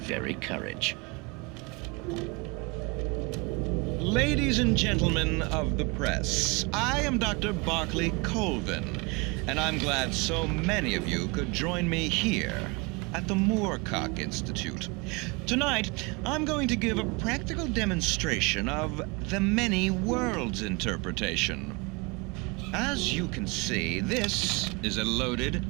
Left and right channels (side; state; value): left; quieter; 28.1 dB